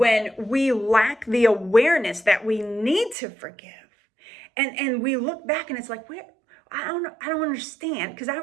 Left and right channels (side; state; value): left; drops out; at 3.2 s